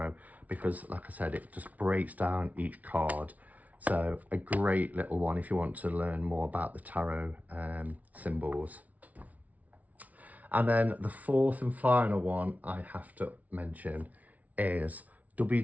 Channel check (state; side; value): late; left; 0.072 ms